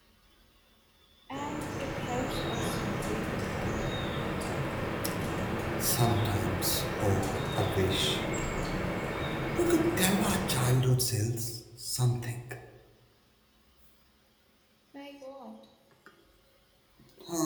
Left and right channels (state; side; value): identical; both; correlation 1.00